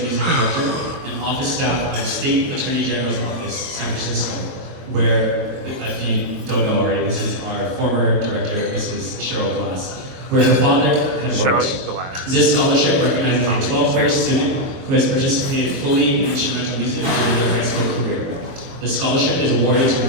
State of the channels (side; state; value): left; late; 23 ms